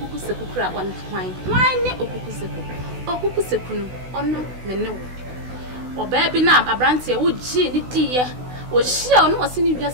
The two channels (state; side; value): late; left; 16 ms